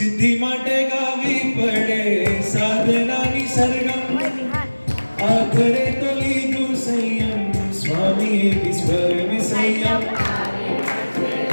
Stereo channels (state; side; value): inverted; both; correlation -1.00